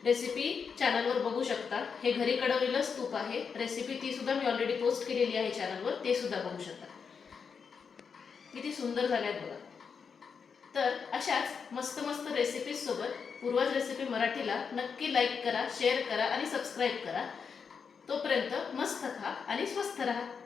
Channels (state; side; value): quieter; right; 6.0 dB